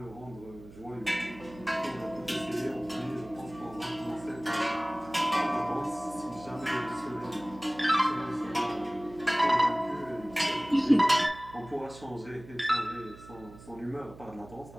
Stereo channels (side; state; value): right; noise; hum, 18 dB below the sound